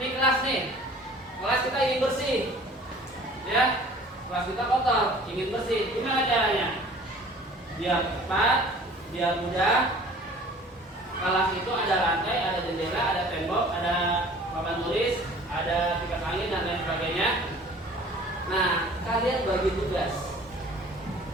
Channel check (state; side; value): normal; both; correlation 0.48